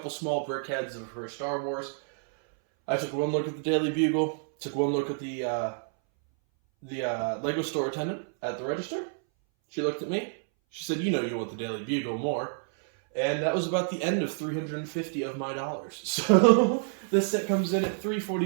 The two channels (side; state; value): left; silent; 59 dB below the other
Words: small brickheads for Star Wars. I took one look at the Daily Bugle, took one look at the Lego store attendant at the register. She looked at me. She said, "You know you want the Daily Bugle more." And that was about the end of 350 of my dollars. So this set comes in at